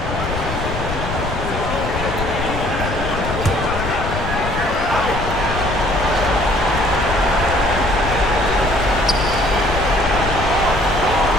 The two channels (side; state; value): left; noise; rumble, 6 dB below the sound